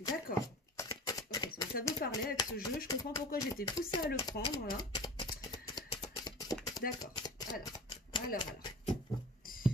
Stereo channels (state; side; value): normal; both; correlation 0.36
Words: D'accord. Ok, ça veut parler avec ce jeu. Je comprends pourquoi j'étais poussée à le prendre, là. D'accord. Alors.